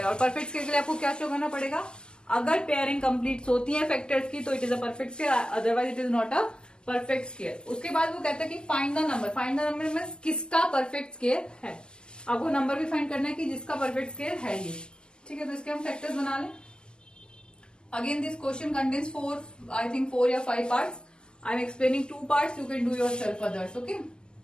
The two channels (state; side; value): late; right; 0.047 ms